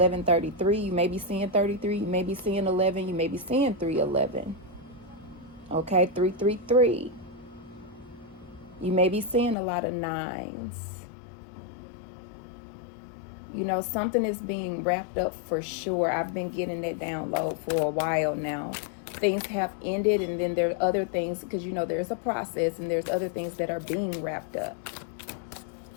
You may be seeing 33. You may be seeing 11. You may be seeing 311. Okay, 333. You may be seeing a lot of nines. Something is being wrapped up for sure. I've been getting that download for a while now. Things have ended, and then there are other things, because there's a process, and there's other things that are being wrapped up.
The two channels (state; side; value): drops out; right; at 9.6 s